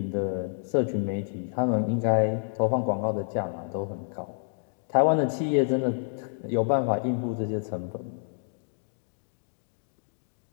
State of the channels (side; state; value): right; silent; digital silence